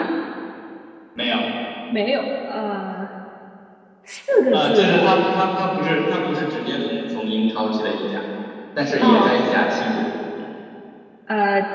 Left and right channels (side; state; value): both; identical; correlation 1.00